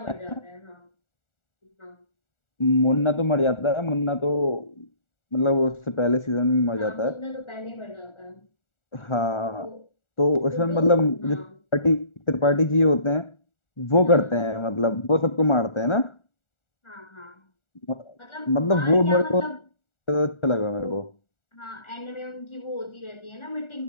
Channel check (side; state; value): right; late; 1.4 ms